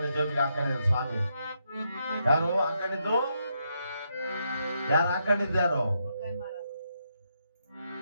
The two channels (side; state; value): both; inverted; correlation -0.80